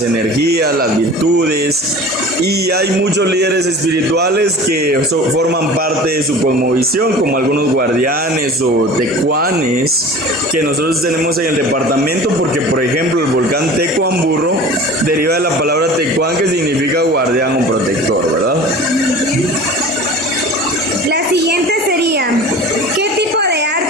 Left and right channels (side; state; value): both; normal; correlation 0.39